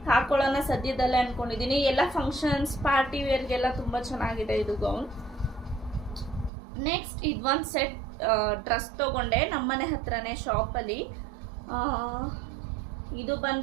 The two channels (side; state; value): left; drops out; at 6.5 s